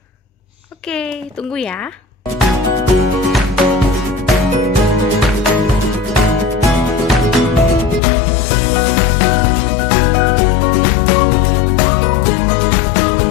Oke, tunggu ya.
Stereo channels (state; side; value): drops out; right; at 8.0 s